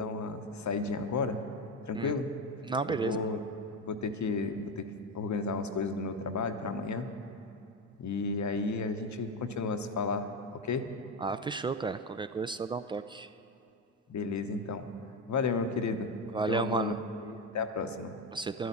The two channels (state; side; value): normal; both; correlation 0.15